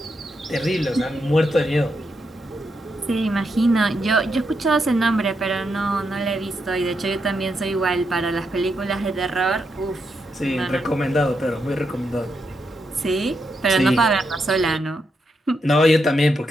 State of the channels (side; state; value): both; normal; correlation 0.82